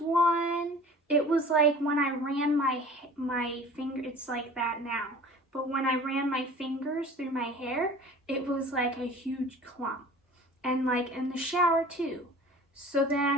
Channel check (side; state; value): both; normal; correlation 0.44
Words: one. It was like when I ran my finger, it's like that now. But when I ran my fingers through my hair, it was like a huge clump. And like in the shower too. So